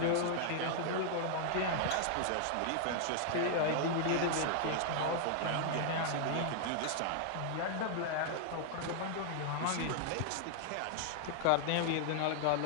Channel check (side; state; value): both; different; correlation -0.01